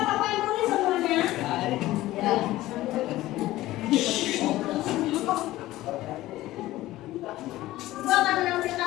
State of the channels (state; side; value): quieter; right; 16.4 dB